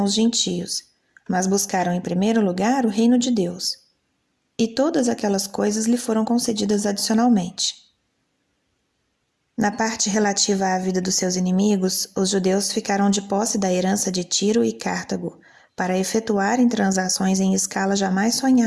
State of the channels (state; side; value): identical; both; correlation 1.00